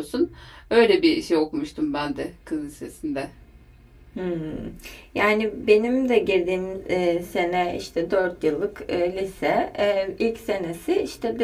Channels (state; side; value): identical; both; correlation 1.00